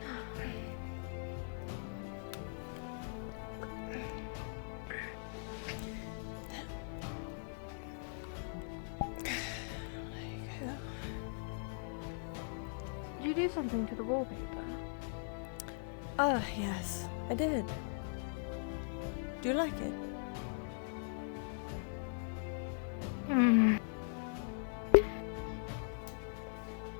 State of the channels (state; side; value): silent; right; digital silence